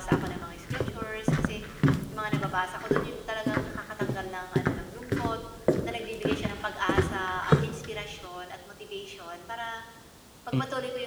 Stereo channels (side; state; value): both; identical; correlation 1.00